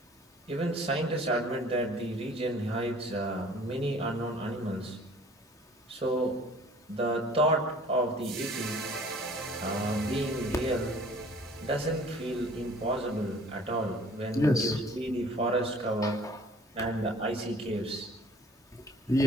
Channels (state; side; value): normal; both; correlation 0.52